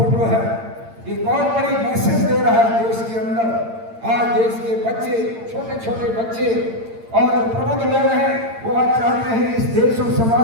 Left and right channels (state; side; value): late; left; 8.8 ms